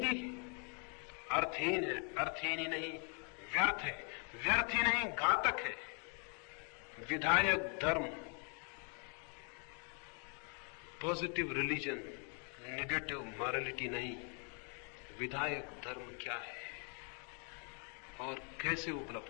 अर्थहीन है, अर्थहीन ही नहीं व्यर्थ है, व्यर्थ ही नहीं घातक है। विधायक धर्म, पॉजिटिव रिलीजन, नेगेटिव मॉरलिटी नहीं। विधायक धर्म क्या है और कैसे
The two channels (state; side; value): quieter; right; 39.2 dB